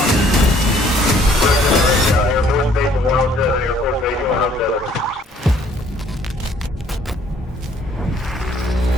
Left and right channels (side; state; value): both; normal; correlation 0.61